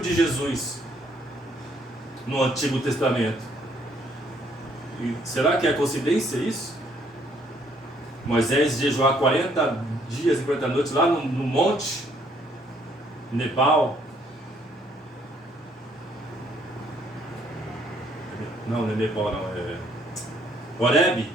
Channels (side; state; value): both; normal; correlation 0.66